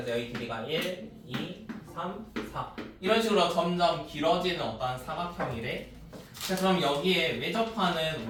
여기 길이가 1, 2, 3, 4 이런 식으로 점점 길어지는 어떠한 사각형이래. 자 그럼 여기에 외접하는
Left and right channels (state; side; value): identical; both; correlation 1.00